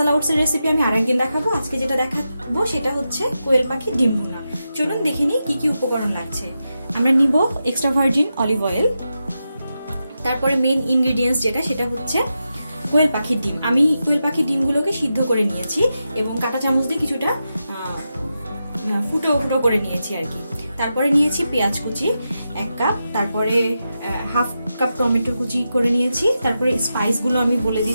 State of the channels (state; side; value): inverted; both; correlation -0.89